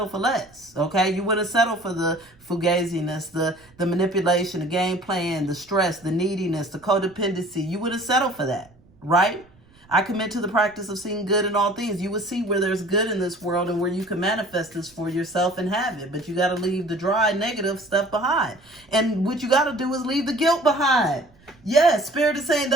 for less, okay? You wouldn't settle for the fugaziness, the manipulation, the game plan, the stress, the neediness, the codependency. You wouldn't settle for that, right? I commit to the practice of seeing good in all things. You would see where there's good in this world and where you can manifest this for yourself and have it. But you got to leave the dry, negative stuff behind. And what you got to do is leave the guilt behind. Yes, Spirit is saying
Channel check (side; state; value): right; noise; rumble, 29 dB below the sound